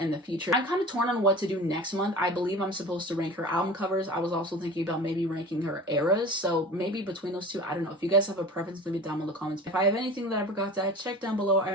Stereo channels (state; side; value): normal; both; correlation 0.37